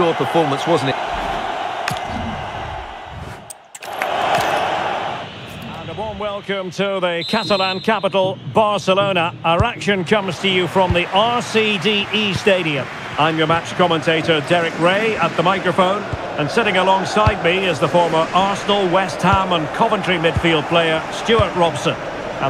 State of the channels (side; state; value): both; identical; correlation 1.00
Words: performance, wasn't it? And a warm welcome to the Catalan capital, Barcelona. Our action comes to you from the RCDE Stadium. I'm your match commentator, Derek Ray, at the microphone. And sitting alongside me is the former Arsenal, West Ham and Coventry midfield player, Stuart Robson.